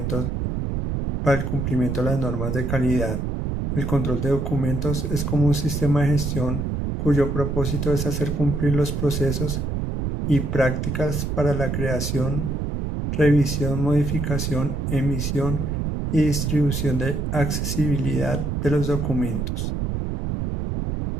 de las normas de calidad. El control de documentos es como un sistema de gestión cuyo propósito es hacer cumplir los procesos y prácticas para la creación, revisión, modificación, emisión y distribución de accesibilidad de los documentos.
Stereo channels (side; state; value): right; noise; rumble, 1 dB below the sound